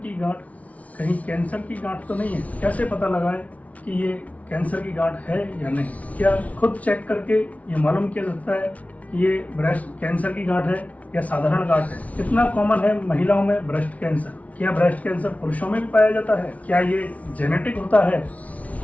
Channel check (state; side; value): late; right; 0.068 ms